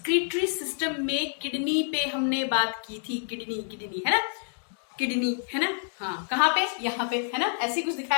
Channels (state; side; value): silent; right; 60 dB below the other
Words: सिस्टम में किडनी पे हमने बात की थी। किडनी है ना, किडनी है ना। हाँ कहाँ पे, यहाँ पे है ना, ऐसे कुछ